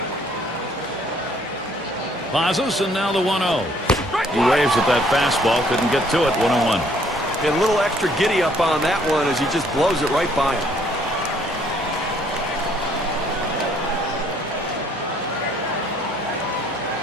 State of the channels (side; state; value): both; normal; correlation 0.63